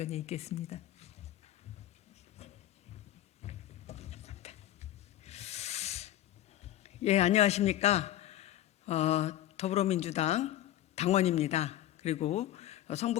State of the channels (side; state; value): right; quieter; 13.3 dB